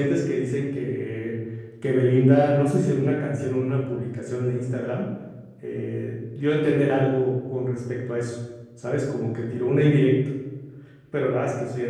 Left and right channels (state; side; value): identical; both; correlation 1.00